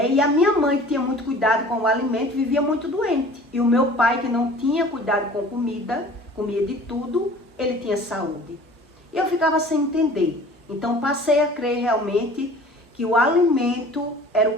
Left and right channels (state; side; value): normal; both; correlation 0.46